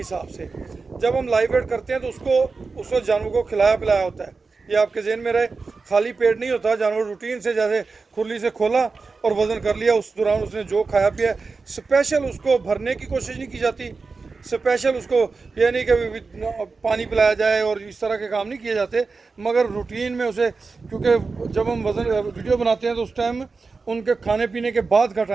से। जब हम लाइव वेट करते हैं तो उस वक्त जानवर को खिलाया पिलाया होता है। ये आपके ज़हन में रहे, खाली पेट नहीं होता। जानवर रूटीन से जैसे खुरली से खोला और वज़न कर लिया, उस दौरान उसने जो खाया पिया, स्पेशल उसको भरने की कोशिश नहीं की जाती। स्पेशल उसको ये नहीं कि पानी पिलाया जाए और इस तरह के काम नहीं किए जाते, मगर रूटीन में उसे, क्योंकि जब हम वज़न वीडियो बनाते हैं तो उस टाइम उनके खाने पीने के बाद का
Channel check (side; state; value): left; quieter; 4.3 dB